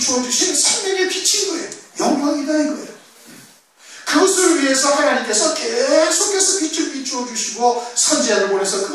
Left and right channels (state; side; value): identical; both; correlation 1.00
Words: 주신 생명의 빛인 거예요. 영광이다 이거예요. 그것을 위해서 하나님께서 계속해서 빛을 비추어 주시고 선지자를 보내서